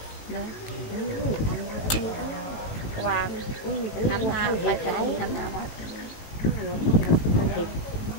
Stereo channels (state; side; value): late; right; 18 ms